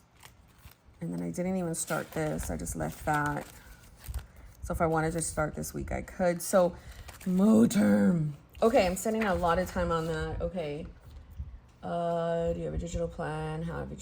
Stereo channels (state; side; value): identical; both; correlation 1.00